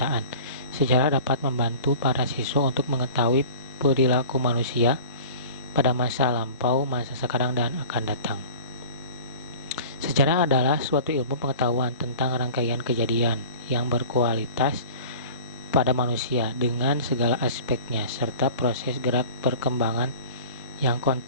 Sejarah dapat membantu para siswa untuk mengetahui perilaku manusia pada masa lampau, masa sekarang, dan akan datang. Sejarah adalah suatu ilmu pengetahuan tentang rangkaian kejadian yang berkualitas pada manusia dengan segala aspeknya, serta proses gerak perkembangan yang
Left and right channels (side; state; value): both; inverted; correlation -0.41